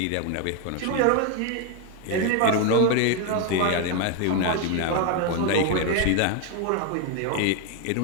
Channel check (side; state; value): both; different; correlation 0.01